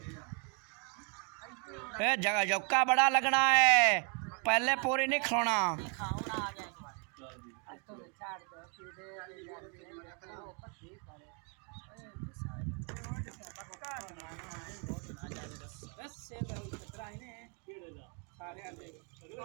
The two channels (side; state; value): left; quieter; 37.0 dB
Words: ए जगह जौका बड़ा लगना है, पहले पूरी नहीं खिलाना। बस से खतरा है ने सारे आले